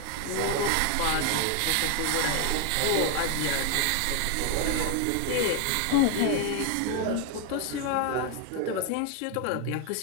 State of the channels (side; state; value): both; different; correlation 0.01